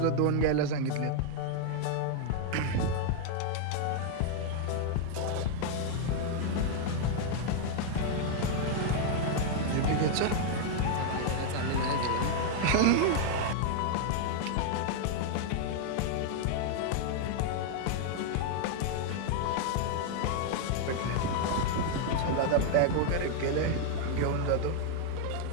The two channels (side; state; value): both; different; correlation 0.00